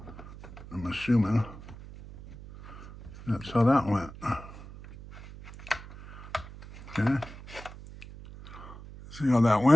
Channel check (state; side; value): noise; right; hum, 15 dB below the sound